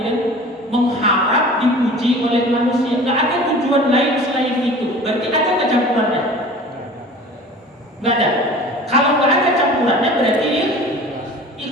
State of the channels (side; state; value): both; normal; correlation 0.42